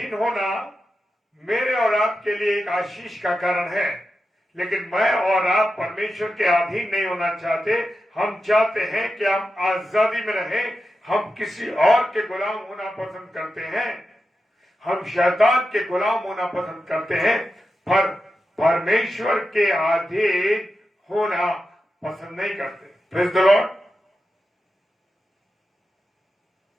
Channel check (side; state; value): both; normal; correlation 0.90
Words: होना मेरे और आपके लिए एक आशीष का कारण है, लेकिन मैं और आप परमेश्वर के अधीन नहीं होना चाहते। हम चाहते हैं कि हम आजादी में रहें। हम किसी और के गुलाम होना पसंद करते हैं, हम शैतान के गुलाम होना पसंद करते हैं, पर परमेश्वर के अधीन होना पसंद नहीं करते। Praise the Lord.